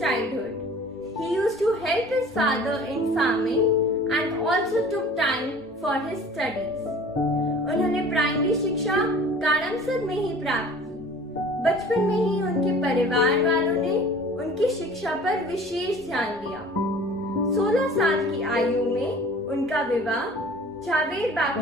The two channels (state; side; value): normal; both; correlation 0.46